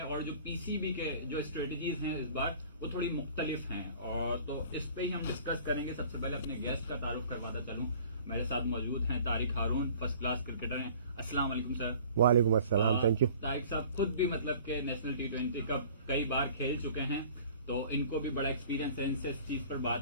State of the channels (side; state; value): both; inverted; correlation -0.48